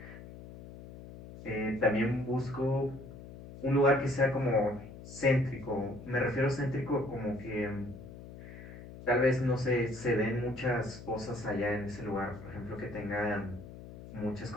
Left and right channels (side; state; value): left; noise; hum, 15 dB below the sound